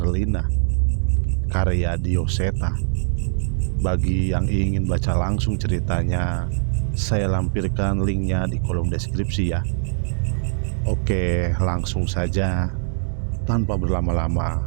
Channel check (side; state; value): left; silent; digital silence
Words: karya Dioseta. Bagi yang ingin baca langsung ceritanya, saya lampirkan linknya di kolom deskripsi ya. Oke, langsung saja. Tanpa berlama-lama,